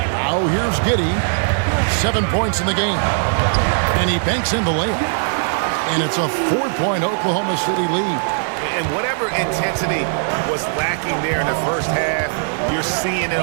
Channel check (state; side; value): silent; left; digital silence